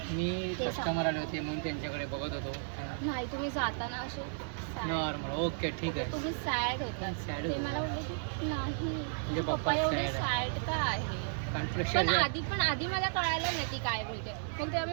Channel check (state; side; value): silent; left; digital silence